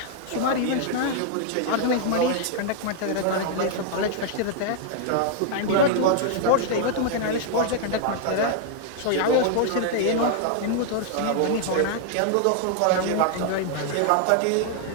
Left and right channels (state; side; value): different; both; correlation -0.01